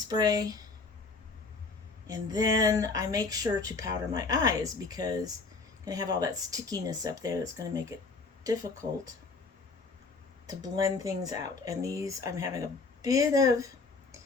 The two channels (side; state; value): right; quieter; 4.1 dB